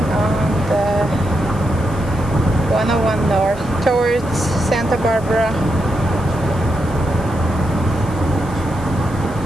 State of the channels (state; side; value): noise; left; hiss, 22 dB below the sound